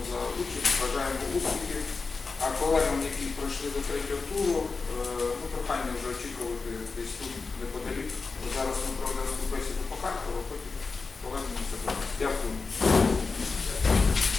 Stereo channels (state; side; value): quieter; right; 4.3 dB